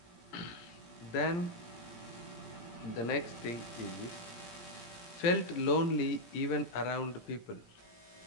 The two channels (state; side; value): late; right; 17 ms